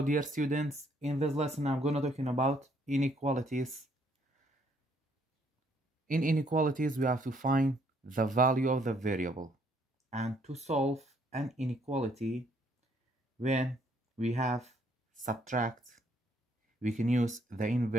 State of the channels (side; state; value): both; normal; correlation 0.67